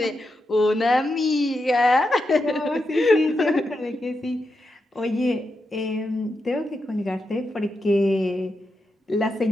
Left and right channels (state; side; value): normal; both; correlation 0.86